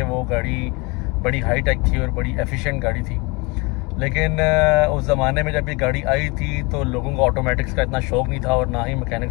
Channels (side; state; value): right; quieter; 27.1 dB